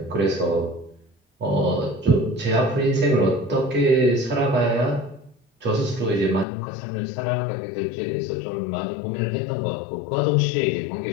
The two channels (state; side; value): drops out; right; at 6.5 s